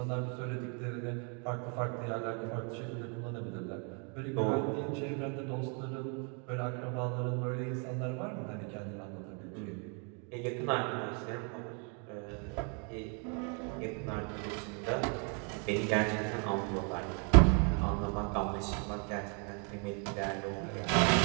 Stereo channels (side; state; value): left; quieter; 37.9 dB